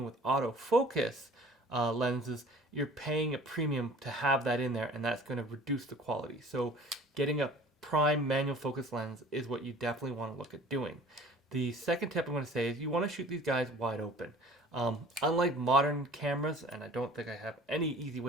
with autofocus lenses, you're paying a premium to have that in there, and that's going to reduce the quality. So getting a prime manual focus lens is what you definitely want to look at doing. The second tip I'm going to say is you want to shoot these guys wide open. Unlike modern cameras, and I don't think I have any easy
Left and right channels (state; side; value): normal; both; correlation 0.48